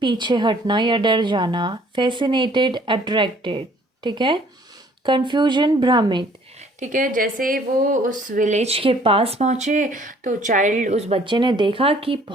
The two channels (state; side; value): normal; both; correlation 0.58